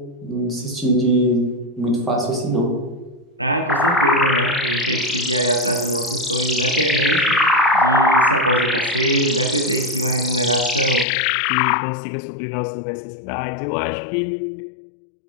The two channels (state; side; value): drops out; right; at 11.1 s